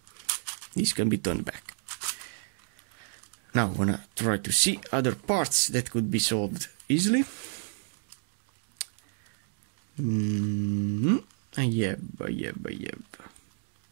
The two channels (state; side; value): silent; left; digital silence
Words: this can be turned back. Now I wanna try to see other parts that could be solved easily. I have.